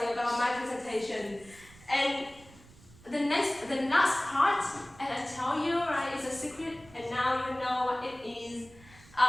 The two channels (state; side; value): noise; right; rumble, 24 dB below the sound